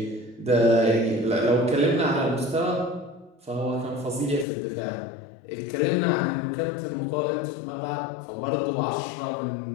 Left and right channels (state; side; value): drops out; right; at 4.5 s